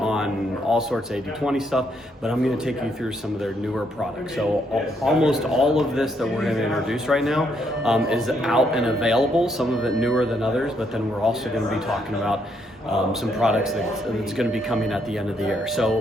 all sorts of 80-20 stuff, but I'm going to take you through some of their newer products. So almost all of this that we're going to introduce right now is out and available, some of it newer than others, but then we're also going to be talking about some products that's going to be coming at the end of the year.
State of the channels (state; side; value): normal; both; correlation 0.74